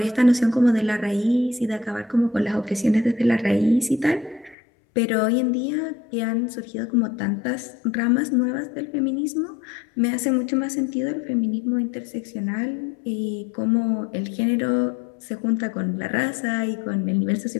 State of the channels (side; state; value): right; drops out; at 4.5 s